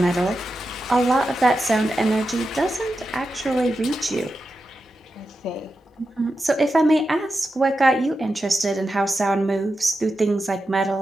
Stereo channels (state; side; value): normal; both; correlation 0.90